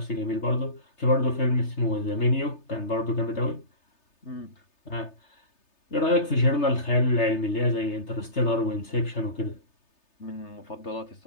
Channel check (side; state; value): right; late; 3.3 ms